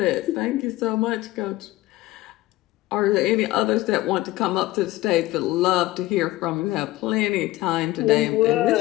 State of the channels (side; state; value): right; quieter; 17.4 dB